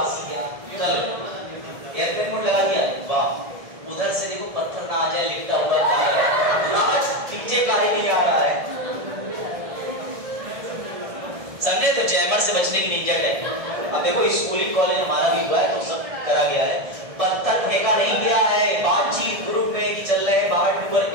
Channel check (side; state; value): left; late; 1.7 ms